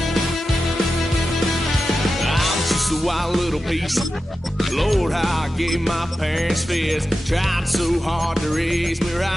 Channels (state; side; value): normal; both; correlation 0.92